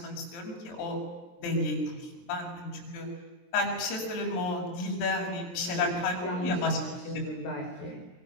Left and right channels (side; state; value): right; late; 23 ms